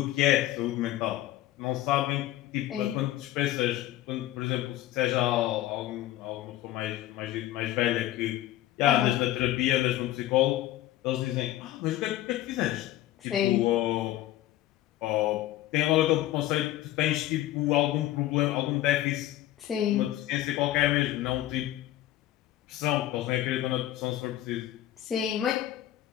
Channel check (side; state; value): right; quieter; 14.2 dB